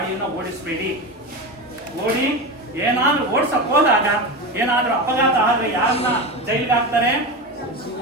ಓಡಿಸಬೇಡಿ. ಏನಾದ್ರೂ ಓಡಿಸಕ್ ಹೋದಾಗ ಏನಾದ್ರೂ ಅಪಘಾತ ಆದ್ರೆ ಯಾರನ್ನ ಜೈಲಿಗೆ ಹಾಕ್ತಾರೆ?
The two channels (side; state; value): both; normal; correlation 0.22